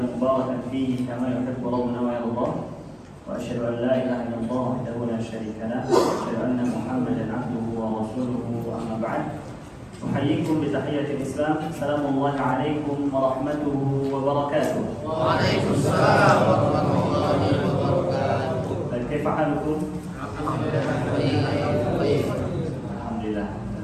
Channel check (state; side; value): identical; both; correlation 1.00